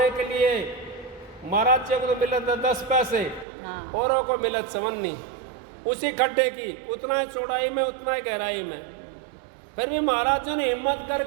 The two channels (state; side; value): drops out; left; at 3.5 s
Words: के लिए महाराज जी को तो मिले थे 10 पैसे, औरों को मिले 54, उसी खड्डे की उतना ही चौड़ाई में उतना ही गहराई में। फिर भी महाराज जी ने हिम्मत